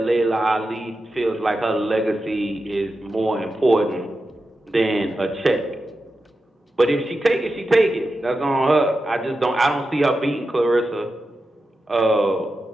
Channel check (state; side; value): normal; both; correlation 0.90